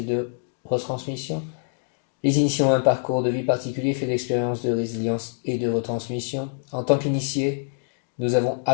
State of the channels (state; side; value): silent; right; digital silence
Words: de retransmission. Les initiés ont un parcours de vie particulier fait d'expériences, de résilience et de retransmission. En tant qu'initiés, nous avons